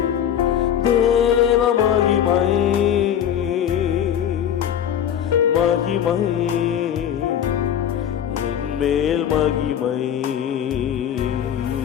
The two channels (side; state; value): right; quieter; 9.5 dB